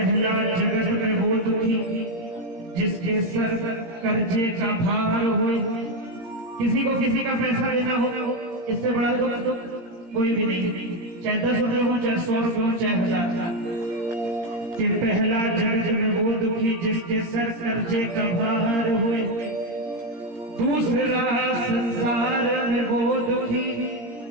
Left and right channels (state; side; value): late; left; 17 ms